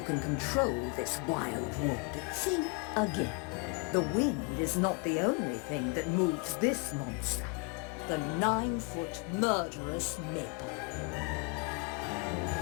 can control this wild wood, think again. The wind is not the only thing that moves this monster. The 9-foot Murderous Maple.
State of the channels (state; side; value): quieter; right; 32.3 dB